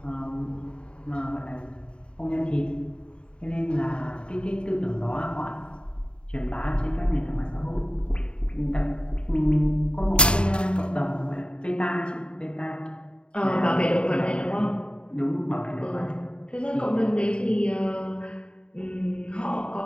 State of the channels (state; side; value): late; right; 0.053 ms